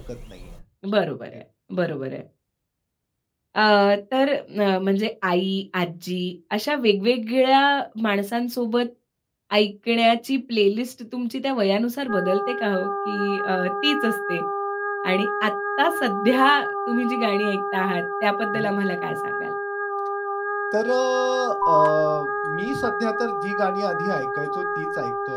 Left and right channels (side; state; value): both; identical; correlation 1.00